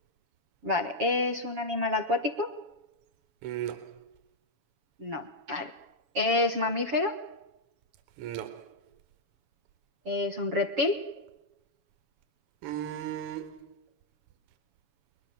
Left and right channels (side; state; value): left; late; 7.1 ms